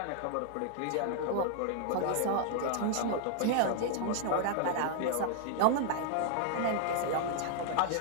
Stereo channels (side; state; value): both; different; correlation 0.00